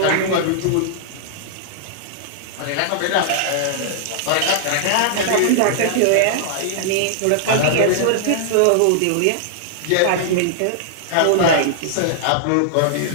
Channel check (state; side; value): different; both; correlation -0.01